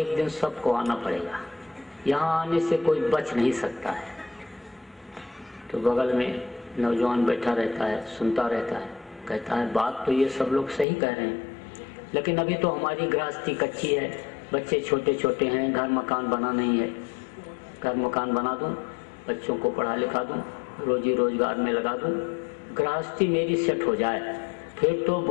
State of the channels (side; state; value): right; drops out; at 10.9 s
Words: दिन सबको आना पड़ेगा, यहाँ आने से कोई बच नहीं सकता है। तो बगल में नौजवान बैठा रहता है, सुनता रहता है, कहता है बात तो ये सब लोग सही कह रहे हैं, लेकिन अभी तो हमारी गृहस्थी कच्ची है, बच्चे छोटे छोटे हैं, घर मकान बना नहीं है। घर मकान बना दूं, बच्चों को पढ़ा लिखा दूं, रोजी रोजगार में लगा दूं, गृहस्थी मेरी सेट हो जाए, फिर तो